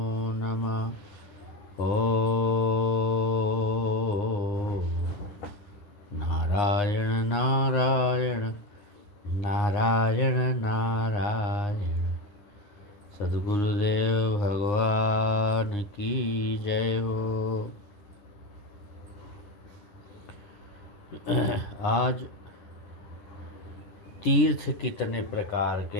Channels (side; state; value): right; late; 9.8 ms